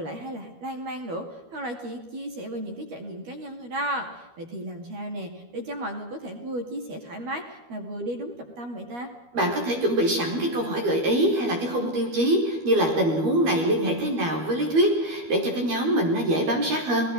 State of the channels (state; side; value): late; left; 12 ms